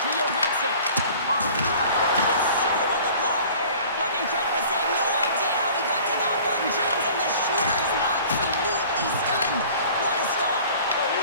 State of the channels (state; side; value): inverted; both; correlation -0.47